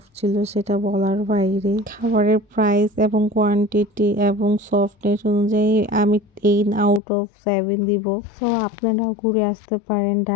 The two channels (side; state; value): right; drops out; at 7.0 s